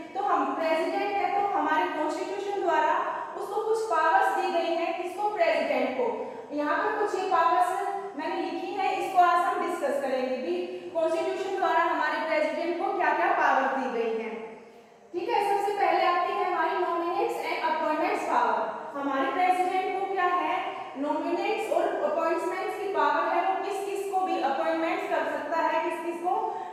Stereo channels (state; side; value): identical; both; correlation 1.00